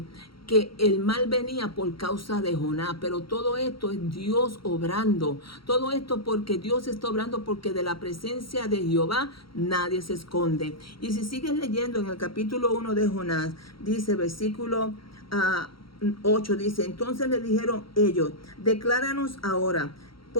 que el mal venía por causa de Jonás, pero todo esto es Dios obrando, todo esto porque Dios está obrando, porque de la presencia de Jehová nadie se esconde. Y si sigues leyendo en el capítulo 1 de Jonás, dice versículo 8, dice, entonces le dijeron ellos, decláranos ahora,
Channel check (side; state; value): right; late; 0.74 ms